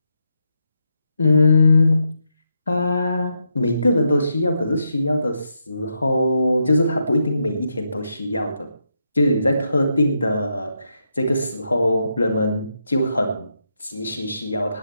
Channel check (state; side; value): inverted; both; correlation -0.82